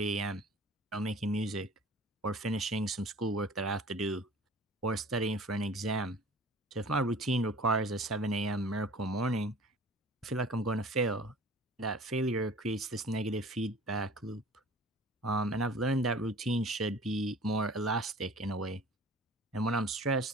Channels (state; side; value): normal; both; correlation 0.46